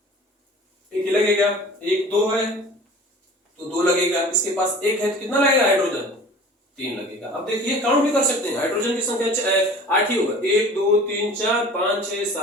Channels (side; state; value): both; normal; correlation 0.43